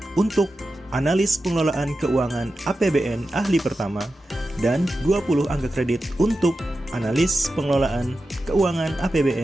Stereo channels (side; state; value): both; normal; correlation 0.92